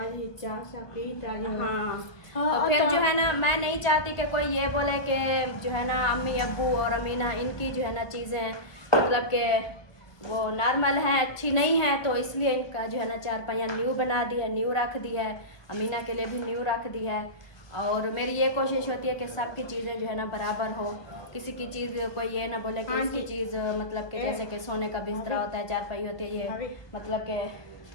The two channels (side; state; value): right; late; 1.2 ms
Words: तो फिर जो है ना मैं नहीं चाहती कि कोई ये बोले कि जो है ना अम्मी अब्बू और अमीना इनकी जो है ना चीज़ें मतलब कि वो नॉर्मल हैं, अच्छी नहीं है, तो इसलिए इनका जो है ना 4 पहिया न्यू बना दिया, न्यू रख दी है। अमीना के लिए भी न्यू रख दी है। और मेरी ये कोशिश होती है कि सबकी चीज़ें जो है ना बराबर हो, किसी की चीज़ कोई ये ना बोले कि इसकी चीज़ मतलब कि जैसे कि सोने का बिस्तरा होता है, 4 पाई होती है, ये मतलब कि